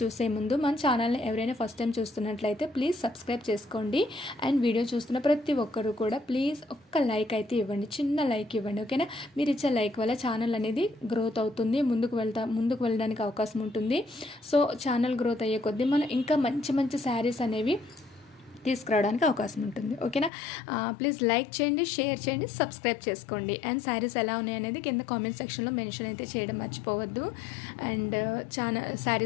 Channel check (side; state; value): right; drops out; at 20.3 s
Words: చూసే ముందు మన ఛానల్ని ఎవరైనా ఫస్ట్ టైం చూస్తున్నట్లయితే ప్లీజ్ సబ్స్క్రైబ్ చేసుకోండి. అండ్ వీడియో చూస్తున్న ప్రతి ఒక్కరు కూడా ప్లీజ్ ఒక్క లైక్ అయితే ఇవ్వండి, చిన్న లైక్ ఇవ్వండి, ఓకేనా? మీరు ఇచ్చే లైక్ వల్ల ఛానల్ అనేది గ్రోత్ అవుతుంది, ముందుకు వెళ్ళడానికి అవకాశం ఉంటుంది. సో ఛానల్ గ్రోత్ అయ్యే కొద్దీ మనం ఇంకా మంచి మంచి శారీస్ అనేవి తీసుకురావడానికి అవకాశం ఉంటుంది, ఓకేనా? ప్లీజ్ లైక్ చేయండి, షేర్ చేయండి, సబ్స్క్రైబ్ చేసుకోండి. అండ్ శారీస్ ఎలా ఉన్నాయనేది కింద కామెంట్ సెక్షన్లో మెన్షన్ అయితే చేయడం మర్చిపోవద్దు. అండ్